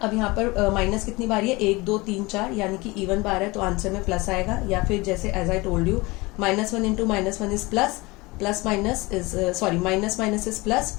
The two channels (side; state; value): right; quieter; 23.2 dB